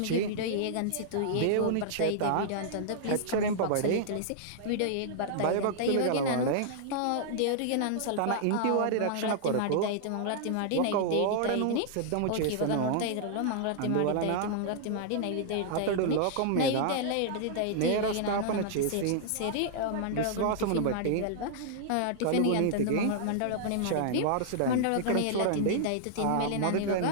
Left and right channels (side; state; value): both; different; correlation -0.01